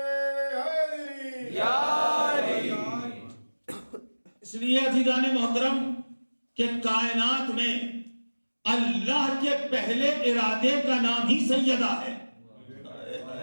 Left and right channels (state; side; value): inverted; both; correlation -1.00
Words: اس لیے عزیزان محترم کہ کائنات میں اللہ کے پہلے ارادے کا نام ہی سیدہ ہے،